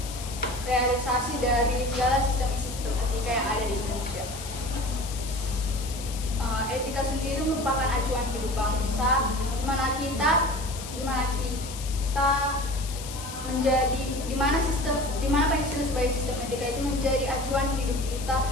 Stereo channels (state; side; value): noise; left; hiss, 11 dB below the sound